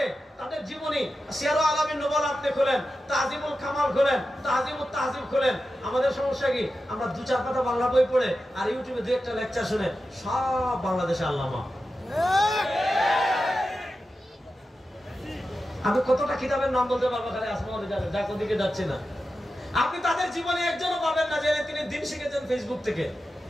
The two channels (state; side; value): normal; both; correlation 0.91